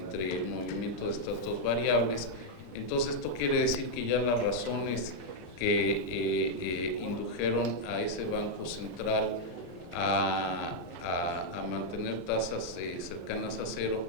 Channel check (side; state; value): right; late; 31 ms